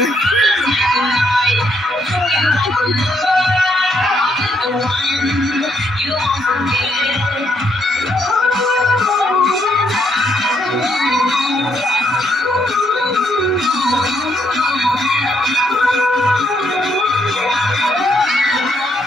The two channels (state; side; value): normal; both; correlation 0.73